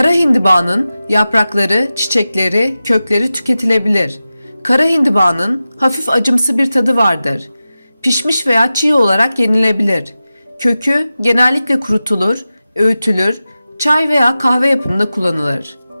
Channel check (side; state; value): both; inverted; correlation -0.94